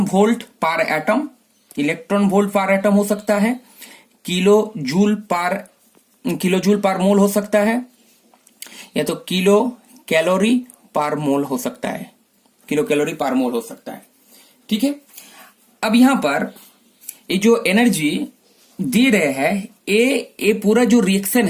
वोल्ट पर एटम। इलेक्ट्रॉन वोल्ट पर एटम हो सकता है, किलो जूल पर मोल हो सकता है, या तो किलो कैलोरी पर मोल हो सकता है। किलो कैलोरी पर मोल हो सकता है। ठीक है, अब यहां पर ये जो एनर्जी दे रहे हैं, ये पूरा जो रिएक्शन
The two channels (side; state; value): both; identical; correlation 1.00